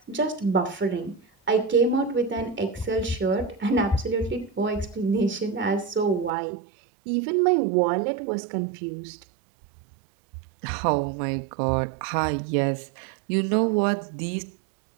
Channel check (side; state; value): left; drops out; at 6.3 s